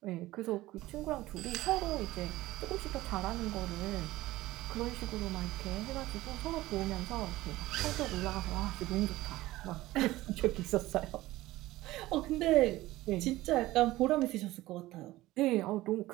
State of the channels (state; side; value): quieter; left; 17.4 dB